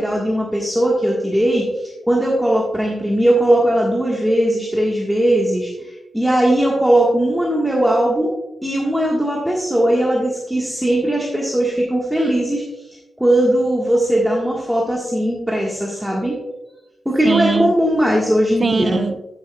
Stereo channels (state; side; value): normal; both; correlation 0.91